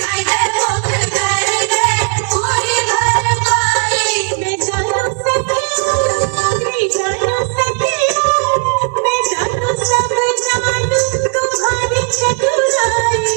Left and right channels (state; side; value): quieter; left; 39.0 dB